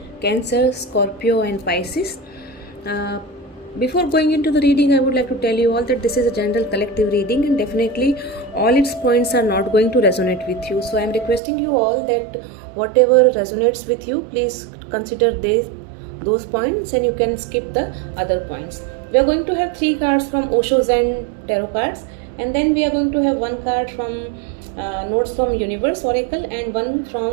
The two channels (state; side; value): drops out; left; at 11.4 s